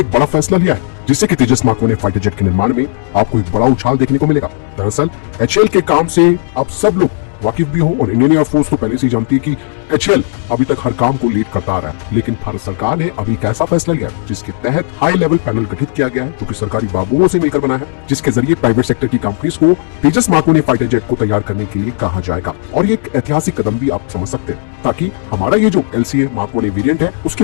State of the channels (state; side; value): silent; right; digital silence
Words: एक बड़ा फैसला लिया है जिससे कि तेजस मार्क 1 फाइटर जेट के निर्माण में आपको एक बड़ा उछाल देखने को मिलेगा। दरअसल एचएएल के काम से आप सब लोग वाकिफ भी हो और इंडियन एयरफोर्स तो पहले से ही जानती है कि एचएएल अभी तक हर काम को लीड करता आ रहा है। लेकिन भारत सरकार ने अभी एक ऐसा फैसला लिया जिसके तहत हाई लेवल पैनल गठित किया गया है जो कि सरकारी बाबुओं से मिलकर बना है, जिसके जरिए प्राइवेट सेक्टर की कंपनीज को तेजस मार्क 1 फाइटर जेट को तैयार करने के लिए कहा जाएगा। और ये एक ऐतिहासिक कदम भी आप समझ सकते हैं ताकि हमारा ये जो LCA मार्क 1 वेरिएंट है